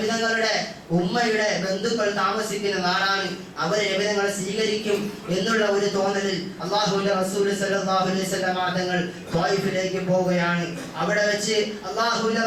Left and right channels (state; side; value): identical; both; correlation 1.00